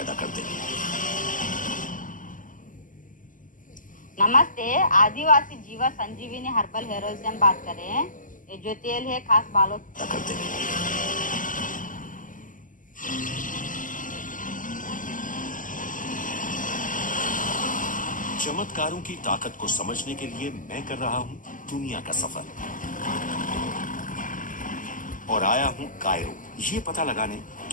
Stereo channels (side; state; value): right; late; 0.38 ms